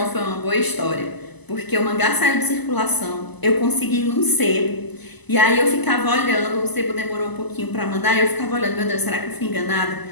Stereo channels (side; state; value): right; late; 1.0 ms